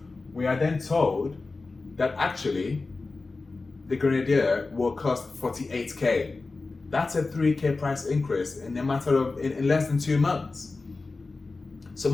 we are then told that actually the Grenadier will cost 48K. That's a 3K price increase in a matter of, in less than 2 months. So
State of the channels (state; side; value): quieter; right; 3.7 dB